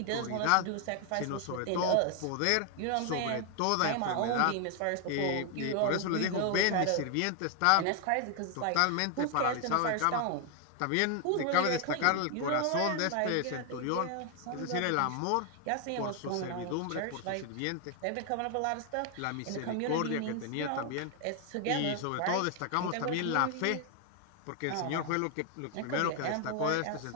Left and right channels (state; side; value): different; both; correlation 0.00